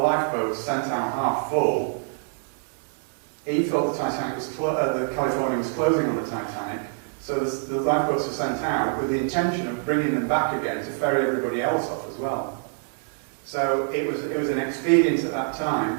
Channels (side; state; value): left; silent; 61 dB below the other